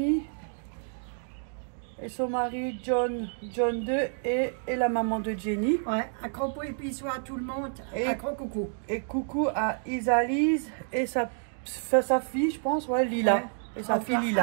et son mari John 2 et la maman de Jenny. Ouais, un gros bisou à tout le monde. Et un gros coucou. Et coucou à Isalise et sa fille, je pense, ouais, Lila. Ouais. Et sa fille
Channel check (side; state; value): left; silent; 59 dB below the other